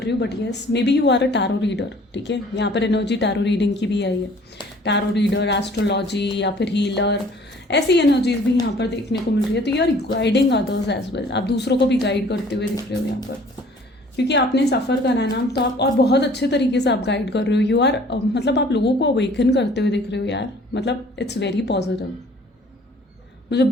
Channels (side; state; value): both; normal; correlation 0.53